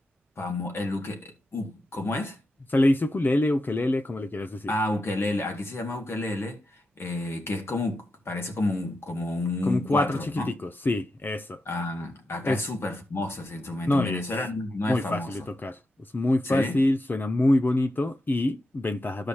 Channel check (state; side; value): normal; both; correlation 0.88